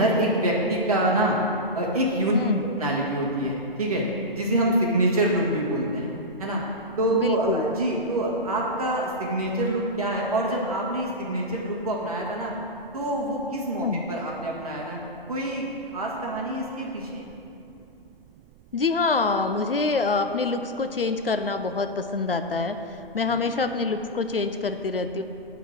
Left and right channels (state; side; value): noise; right; rumble, 26 dB below the sound